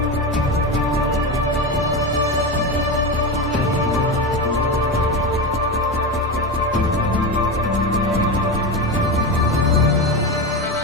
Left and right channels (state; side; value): normal; both; correlation 0.18